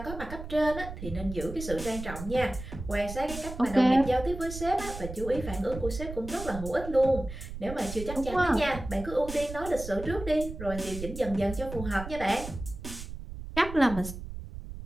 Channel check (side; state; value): right; noise; rumble, 10 dB below the sound